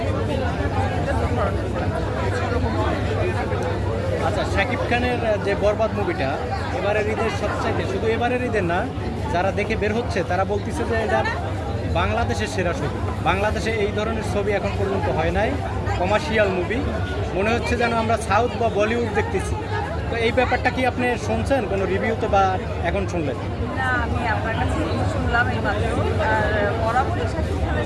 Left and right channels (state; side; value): identical; both; correlation 1.00